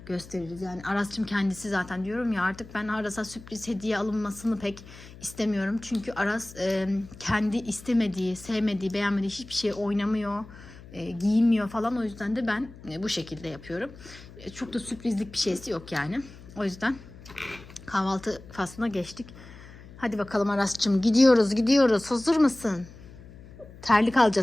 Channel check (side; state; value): left; noise; hum, 18 dB below the sound